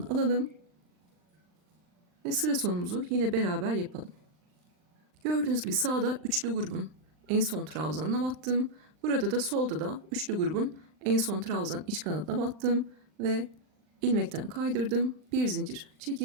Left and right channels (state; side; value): late; left; 39 ms